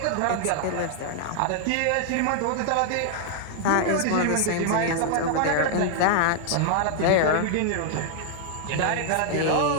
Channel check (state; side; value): different; both; correlation 0.00